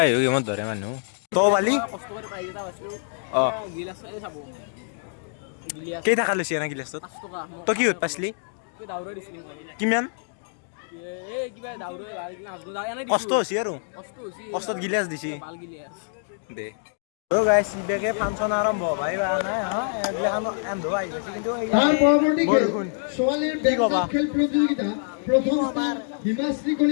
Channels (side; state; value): right; silent; digital silence